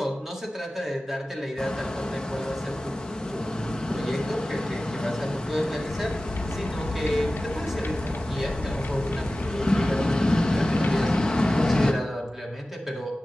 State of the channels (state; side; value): normal; both; correlation 0.96